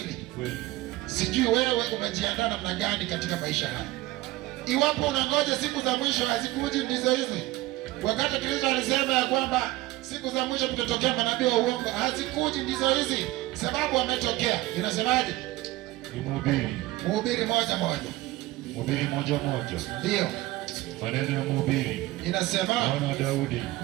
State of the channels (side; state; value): left; quieter; 18.2 dB